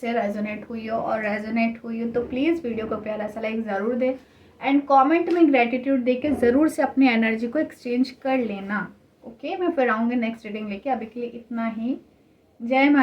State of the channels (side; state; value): both; identical; correlation 1.00